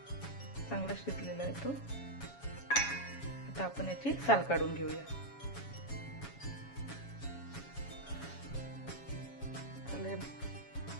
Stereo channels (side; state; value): right; late; 7.2 ms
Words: चांगला शिजलेला आहे तो। आता आपण याची साल काढून घेऊया।